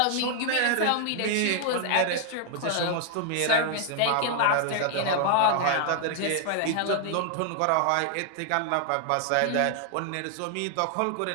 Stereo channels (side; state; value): both; different; correlation 0.00